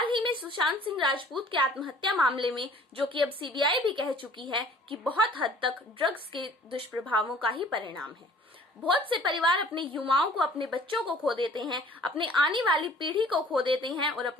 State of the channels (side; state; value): both; normal; correlation 0.52